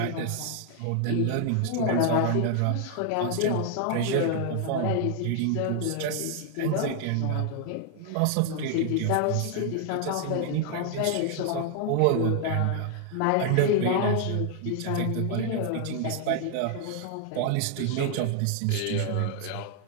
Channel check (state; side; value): different; both; correlation 0.00